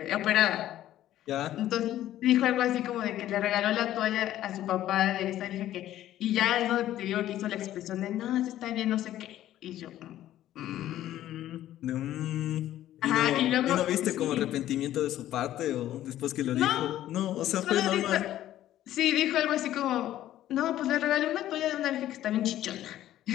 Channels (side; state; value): right; quieter; 13.1 dB